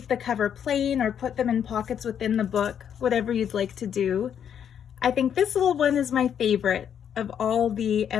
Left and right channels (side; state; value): right; quieter; 8.7 dB